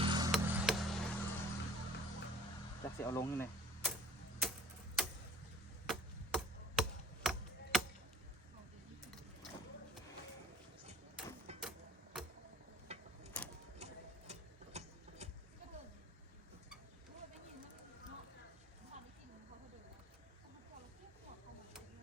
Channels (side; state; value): both; normal; correlation 0.49